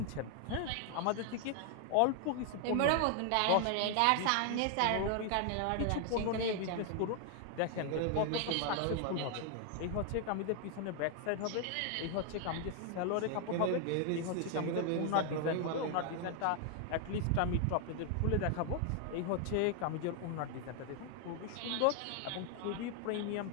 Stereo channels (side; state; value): both; different; correlation 0.00